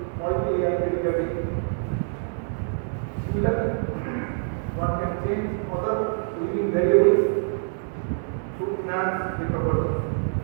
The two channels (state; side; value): silent; left; digital silence